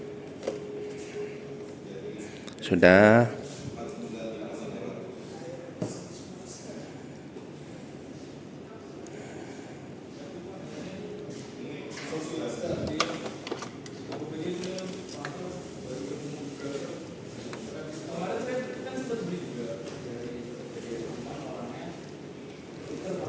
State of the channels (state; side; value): identical; both; correlation 1.00